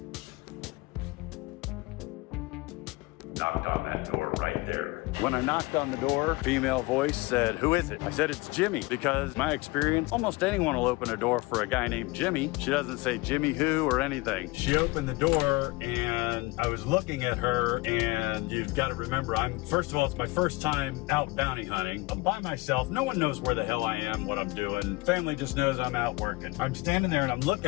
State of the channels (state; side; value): quieter; right; 23.0 dB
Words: Knocked on that door right there. When I knocked on the door, female voice said, "Who is it?" I said, "It's Jimmy," because my experience, almost anyone will open a door for a guy named Jimmy. She doesn't say Jimmy who or anything. She opened the door and I was looking at her, and you've got to remember, first of all, it's my first time out bounty hunting. I'm by myself. No one knows where the hell I am, what I'm doing. Family just knows I'm out working. I'm standing there and I'm